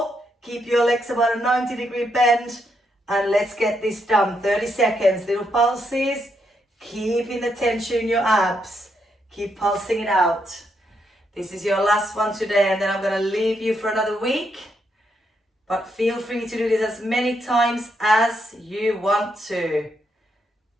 Keep your legs about a 90-degree bend. And let's get this done. 30 seconds, little pulses. Keeping the tension in your abs. Keep pulsing it out. This is your last one today, and then I'm going to leave you for another week. But feel free to do this as many times as you want to.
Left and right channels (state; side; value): normal; both; correlation 0.79